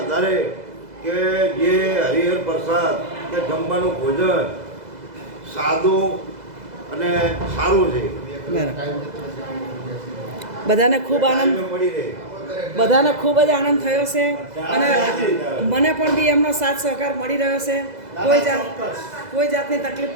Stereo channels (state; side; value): late; left; 2.0 ms